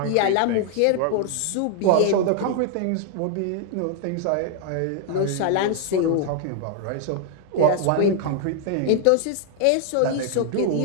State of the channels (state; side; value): different; both; correlation 0.00